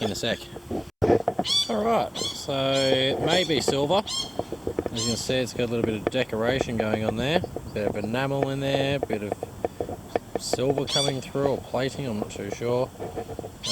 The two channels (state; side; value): identical; both; correlation 1.00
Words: in a sec. Alright, so it may be silver. As you can see, it's got a little bit of decoration going on there. A bit of enamel in there, a bit of silver coming through, or plating, I'm not too sure.